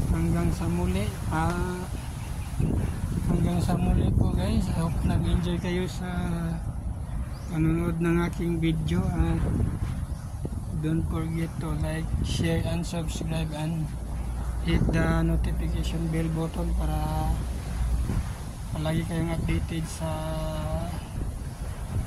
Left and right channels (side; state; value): both; identical; correlation 1.00